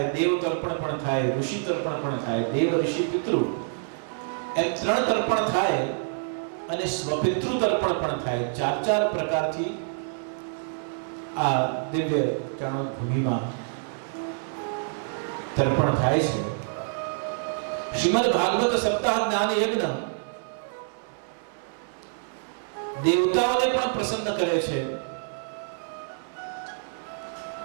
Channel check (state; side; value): silent; left; digital silence